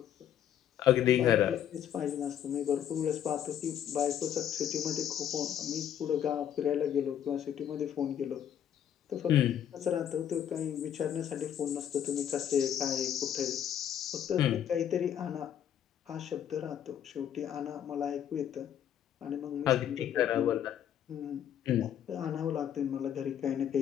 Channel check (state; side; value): quieter; right; 9.8 dB